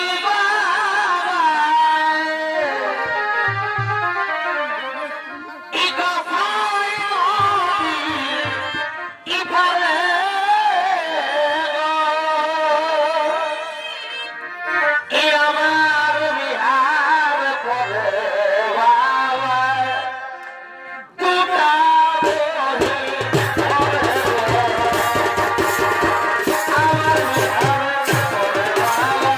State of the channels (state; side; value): identical; both; correlation 1.00